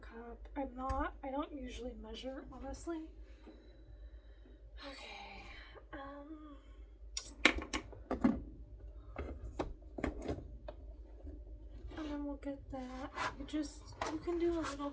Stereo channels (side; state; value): both; identical; correlation 1.00